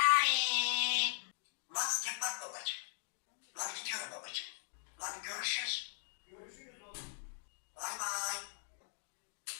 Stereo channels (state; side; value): silent; right; digital silence